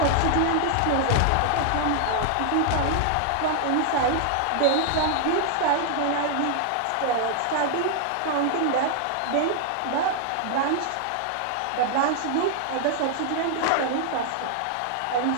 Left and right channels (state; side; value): different; both; correlation 0.00